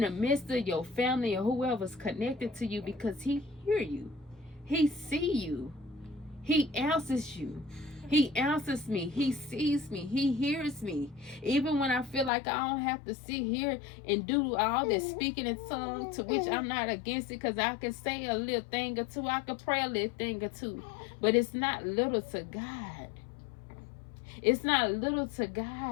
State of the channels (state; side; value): drops out; right; at 12.3 s